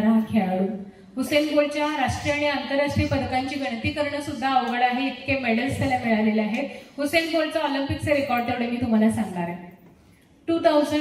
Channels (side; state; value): both; identical; correlation 1.00